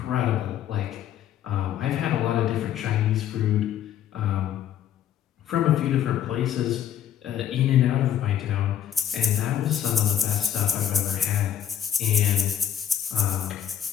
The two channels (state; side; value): quieter; right; 9.9 dB